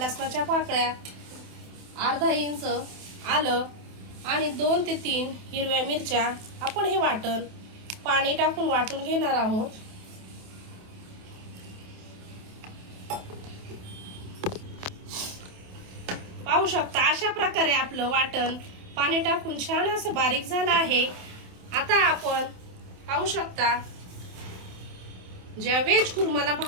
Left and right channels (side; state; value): left; late; 28 ms